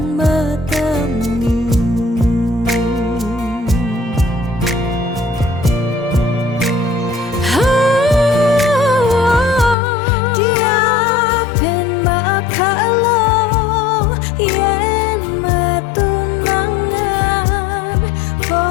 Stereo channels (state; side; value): drops out; right; at 9.8 s